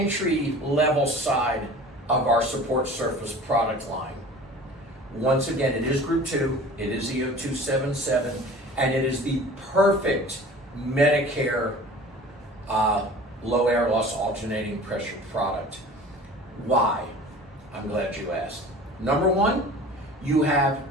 level side of our support surface product line. Once again, it is Group 2, it is EO277, and it is the perfect Medicare low air loss alternating pressure product. Why? I'm glad you asked. Number one, you have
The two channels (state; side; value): normal; both; correlation 0.42